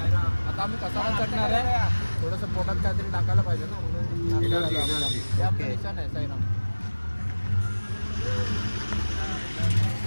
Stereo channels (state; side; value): inverted; both; correlation -1.00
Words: आता आम्ही कसारा चढणार आहे. थोडंसं पोटात काहीतरी टाकायला पाहिजे ना.